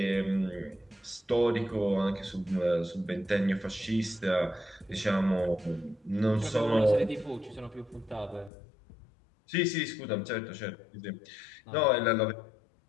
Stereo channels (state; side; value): drops out; right; at 8.5 s